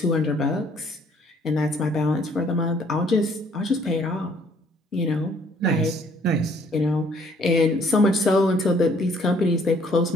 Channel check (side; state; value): both; normal; correlation 0.62